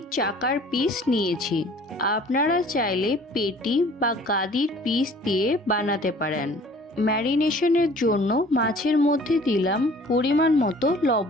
চাকার পিস নিয়েছি। আপনারা চাইলে পেটি বা গাদির পিস দিয়ে বানাতে পারেন। ম্যারিনেশনের জন্য মাছের মধ্যে দিলাম পরিমাণ মতো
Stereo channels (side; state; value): both; normal; correlation 0.51